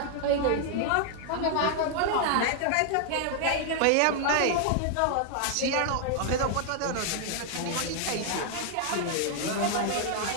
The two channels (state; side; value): different; both; correlation 0.00